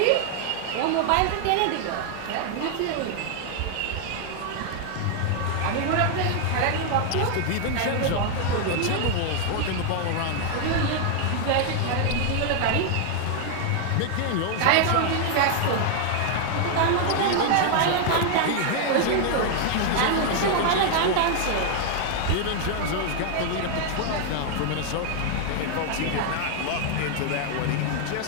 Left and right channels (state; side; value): different; both; correlation 0.00